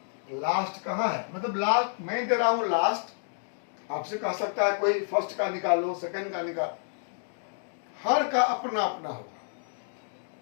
लास्ट कहाँ है? मतलब लास्ट मैं दे रहा हूं लास्ट, आपसे कह सकता है कोई फर्स्ट का निकालो, सेकंड का निकाल, हर का अपना अपना होगा।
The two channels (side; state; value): right; silent; digital silence